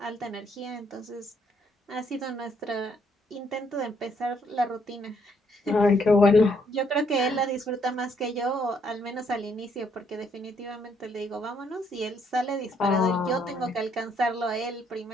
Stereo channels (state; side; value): normal; both; correlation 0.70